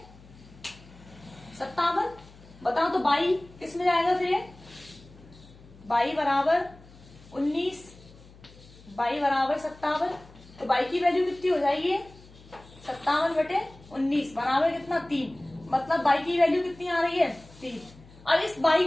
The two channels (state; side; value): noise; left; hum, 23 dB below the sound